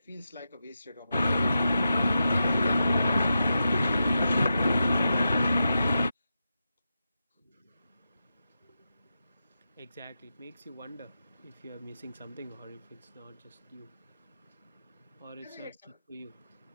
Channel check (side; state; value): both; inverted; correlation -0.89